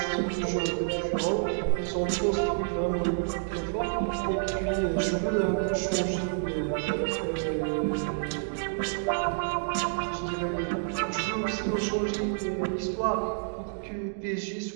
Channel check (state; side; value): silent; left; digital silence